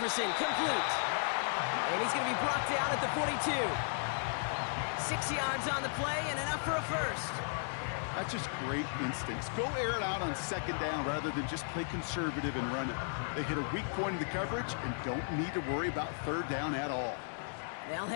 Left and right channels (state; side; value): silent; right; digital silence